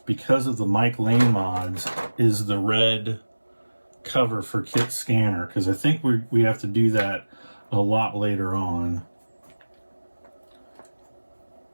because of the Mike Lane mods is the red cover for KITT scanner, because I think we have to do that a lot later on.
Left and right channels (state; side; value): inverted; both; correlation -1.00